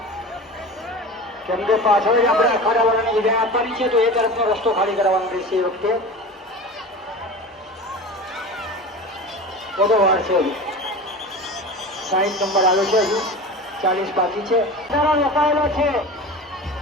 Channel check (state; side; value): normal; both; correlation 0.32